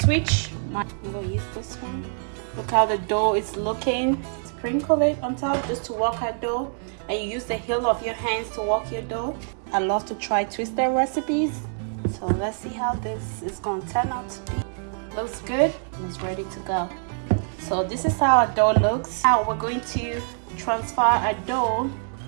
switch. I'm going to use this one. Look how the dough is looking. Sprinkle it on top just to work our dough, and you use the heel of your hands to work your dough. I love to try twisted recipes, so let's see how this is going to turn out to be. Looks good and it's ready to go. So this is how our dough looks. Now we're going to transfer our dough.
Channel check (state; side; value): silent; left; 62 dB below the other